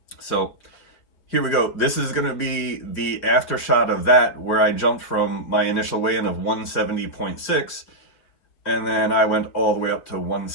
So here we go. This is going to be the after shot of that, where I jumped from my initial weigh-in of 170.6, and then I went all the way up to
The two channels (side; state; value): right; late; 5.5 ms